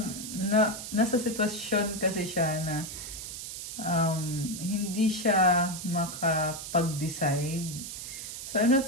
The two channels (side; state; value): right; noise; hiss, 8 dB below the sound